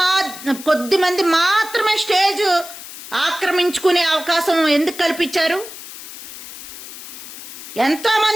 మంది మాత్రమే స్టేజ్ ఆక్రమించుకునే అవకాశం ఎందుకు కల్పించారు? ఎంతో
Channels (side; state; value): left; noise; hiss, 13 dB below the sound